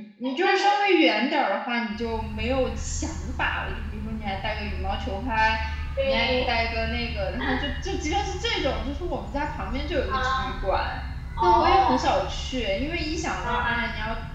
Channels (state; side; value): identical; both; correlation 1.00